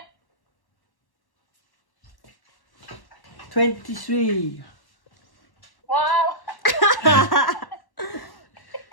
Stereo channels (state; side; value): late; right; 1.1 ms